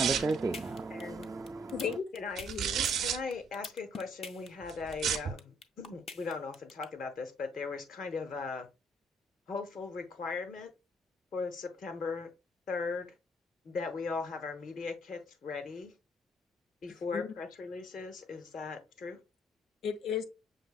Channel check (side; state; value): both; normal; correlation 0.65